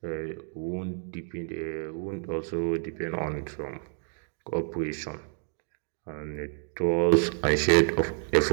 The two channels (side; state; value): left; silent; 59 dB below the other